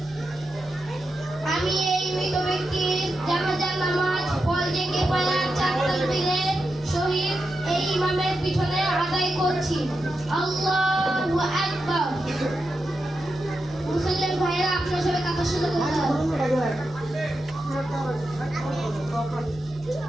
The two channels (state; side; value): normal; both; correlation 0.88